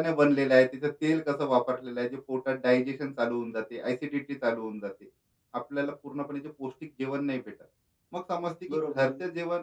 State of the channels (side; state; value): both; identical; correlation 1.00